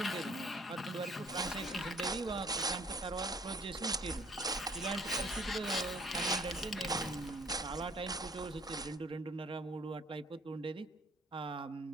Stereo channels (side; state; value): both; normal; correlation 0.56